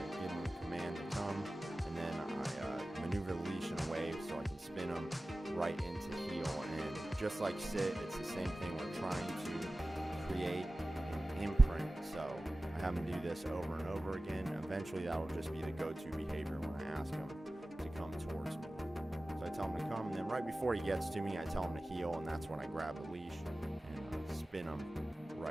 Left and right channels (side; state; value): both; normal; correlation 0.96